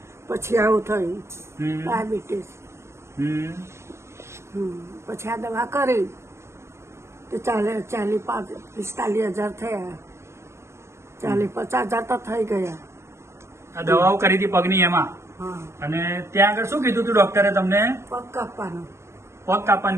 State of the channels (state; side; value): late; left; 0.13 ms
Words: પછી આવું થયું હમ ડાયાબિટીસ. હમ પછી આ દવા કરી તો 45,000 થયા. 50,000 તો થઈ ગયા. આ દવાઓ કરી હતી પગની એમાં, હા. અને ત્યાં આગળ શું કીધું હતું ડોક્ટરે તમને? પગ કાપવાનો. પગ